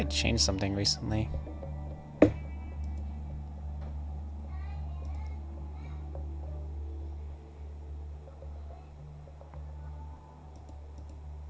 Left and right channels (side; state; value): both; identical; correlation 1.00